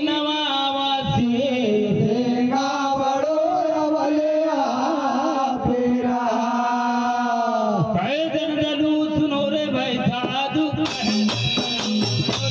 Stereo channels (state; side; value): identical; both; correlation 1.00